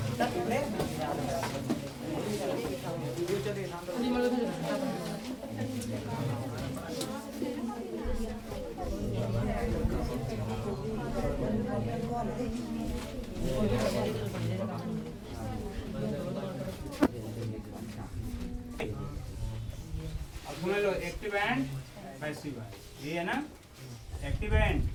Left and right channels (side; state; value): both; identical; correlation 1.00